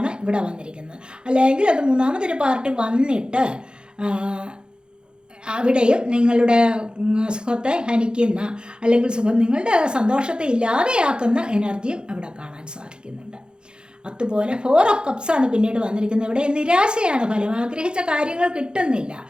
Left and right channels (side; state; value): left; late; 0.049 ms